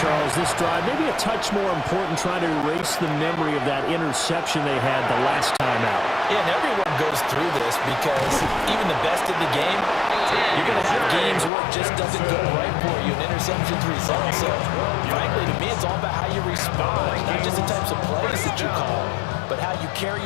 this drive maybe a touch more important, trying to erase the memory of that interception they had the last time out. Yeah, and everyone goes through this because even the best in the game, you're going to have games where it just doesn't go right for you, and interceptions result. So, frankly, to me, it's all about how you respond, not just the types of plays that you call, but how you carry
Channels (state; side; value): drops out; right; at 11.5 s